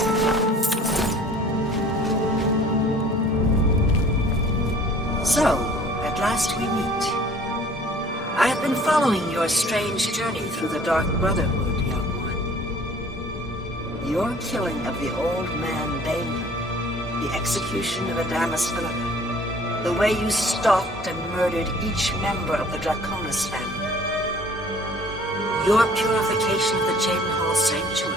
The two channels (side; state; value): both; normal; correlation 0.52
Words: So, at last we meet. I have been following your strange journey through the Dark Brotherhood, young one. Your killing of the old man Balin, the execution of Adamus Philippa, the way you stalked and murdered each member of the Draconis family. Your purification of the Jadenhall Sanctuary.